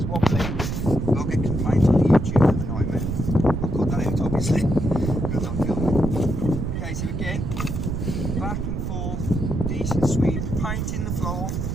wobbly, we'll get complaints on the YouTube of the nightmare. I'll cut that out, obviously, because I'm filming. Okay, so again, back and forth, decent sweep, painting the floor.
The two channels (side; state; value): right; noise; rumble, 2 dB below the sound